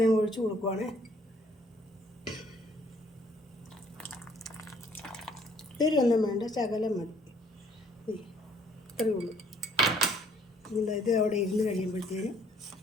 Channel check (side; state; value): both; normal; correlation 0.62